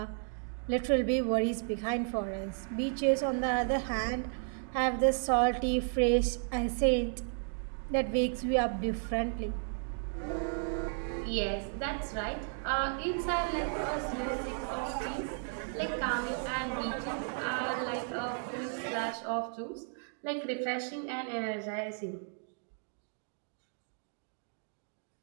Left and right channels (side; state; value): left; silent; 55 dB below the other